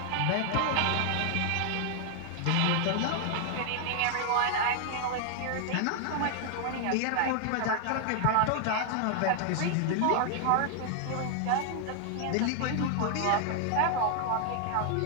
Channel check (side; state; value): both; different; correlation 0.00